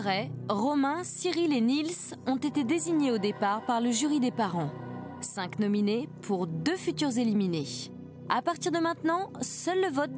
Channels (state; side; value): identical; both; correlation 1.00